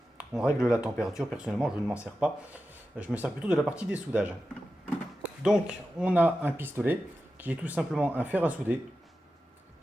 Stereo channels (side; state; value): both; normal; correlation 0.92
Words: On règle la température. Personnellement, je ne m'en sers pas. Je me sers plutôt de la partie dessoudage. Donc, on a un pistolet qui est tout simplement un fer à souder